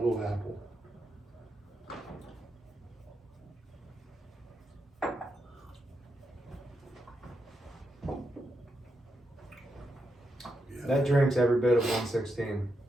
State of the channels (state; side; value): normal; both; correlation 0.84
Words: little apple. Yeah. That drink's every bit of 116.